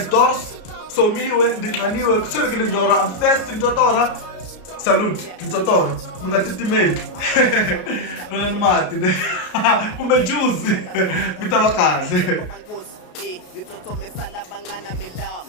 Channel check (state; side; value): late; right; 33 ms